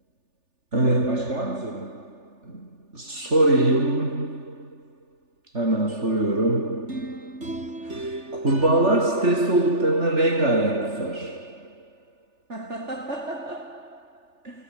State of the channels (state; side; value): late; left; 3.4 ms